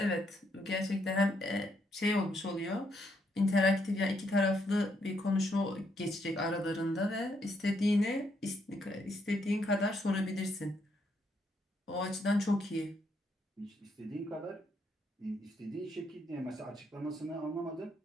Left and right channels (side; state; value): both; normal; correlation 0.75